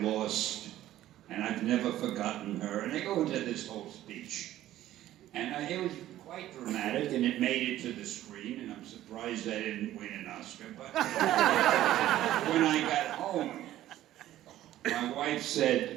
lost, and I've never forgotten her. And I go into this whole speech. And it was quite dramatic, and it made it to the screen, and I'm surprised I didn't win an Oscar. But when I got home, my wife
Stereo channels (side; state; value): left; quieter; 13.7 dB